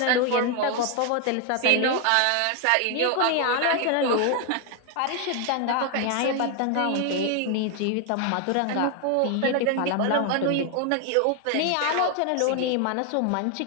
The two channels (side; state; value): both; different; correlation 0.01